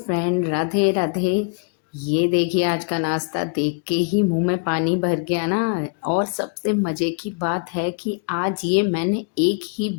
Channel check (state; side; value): quieter; right; 35.7 dB